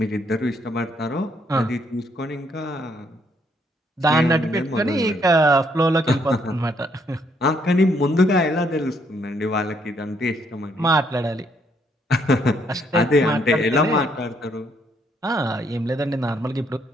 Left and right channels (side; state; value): both; normal; correlation 0.71